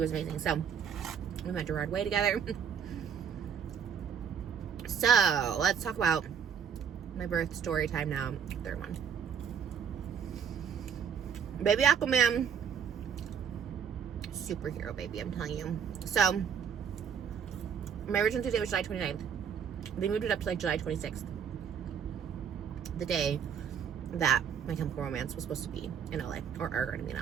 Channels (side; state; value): left; quieter; 7.6 dB